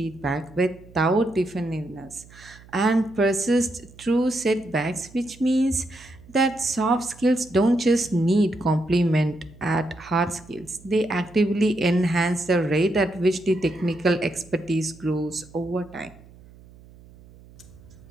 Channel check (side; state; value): right; noise; hum, 23 dB below the sound